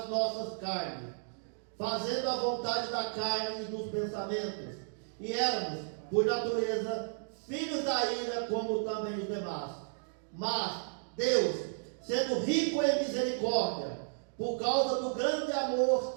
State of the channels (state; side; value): silent; left; digital silence